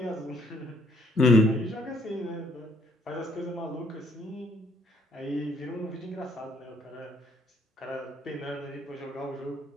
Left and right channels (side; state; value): both; normal; correlation 0.66